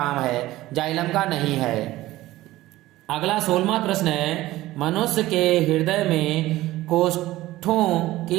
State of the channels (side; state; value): left; quieter; 16.7 dB